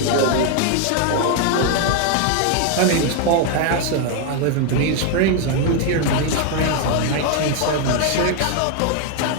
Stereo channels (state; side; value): different; both; correlation 0.00